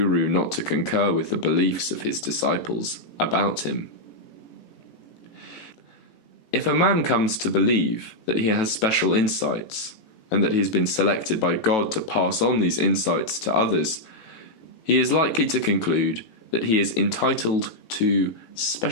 not to concur with the beliefs of his disciples about him. If a man comes to believe that he has special insights, and that he has been selected by God to pass on these insights to others, he is likely to conclude that he is entitled to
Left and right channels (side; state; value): right; late; 18 ms